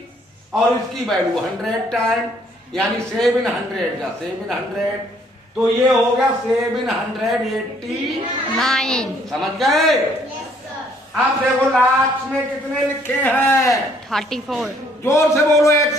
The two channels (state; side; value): normal; both; correlation 0.64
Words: और इसकी वैल्यू 100 टाइम यानी 700 या 700। तो ये हो गया 789। समझ गए? अब देखो लाख में कितने लिखे हैं? 34। जोर से बोलो एक